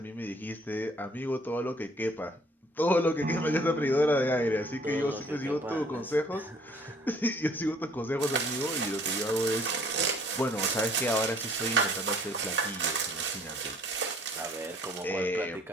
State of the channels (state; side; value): normal; both; correlation 0.58